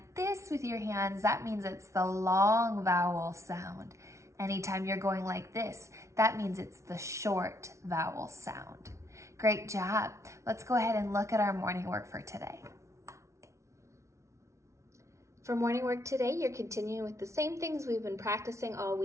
this with your hands, that means it's the long vowel sound. Anytime you're going like this, that means it's the short vowel sound. Great job. Let's go ahead and look at our morning work for today. For morning work today, you're continuing with the same things we've been practicing all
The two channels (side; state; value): left; late; 0.14 ms